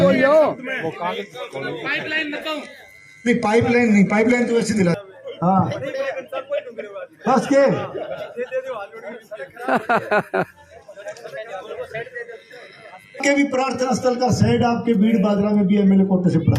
बोलियो नहीं पाइपलाइन तो वैसे दिला हाँ बस के के भी प्रार्थना स्थल का शेड आपके भीड़ बादरा में भी एमएलए कोटे से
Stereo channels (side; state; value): both; identical; correlation 1.00